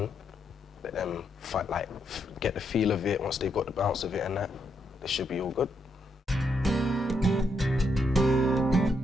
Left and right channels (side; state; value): both; normal; correlation 0.78